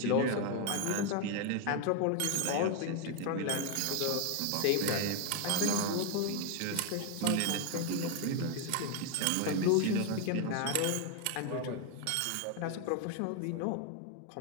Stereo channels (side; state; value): both; different; correlation 0.01